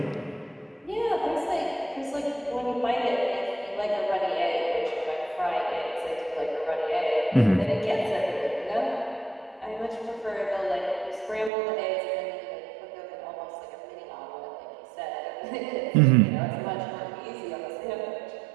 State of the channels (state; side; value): drops out; left; at 11.5 s